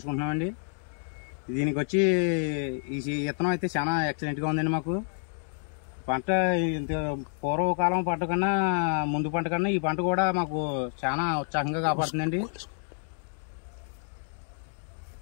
దీనికి వచ్చి ఈ విత్తనం అయితే చాలా ఎక్సలెంట్గా ఉందండి. మాకు పంట ఇంత పూర్వకాలం పంట కన్నా ముందు పంట కన్నా ఈ పంట కూడా మాకు చాలా ఉత్సాహంగా కాపాడుతుందండి.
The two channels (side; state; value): right; silent; 59 dB below the other